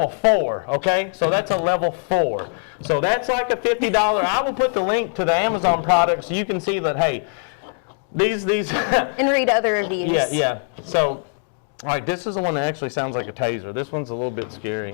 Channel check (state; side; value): silent; right; 63 dB below the other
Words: 4, okay? So that's a level 4. So that's like a $50. I will put the link to the Amazon product so you can see that, hey, these And read other reviews. yeah. So, all right, this is the one that actually sounds like a taser. This one's a little bit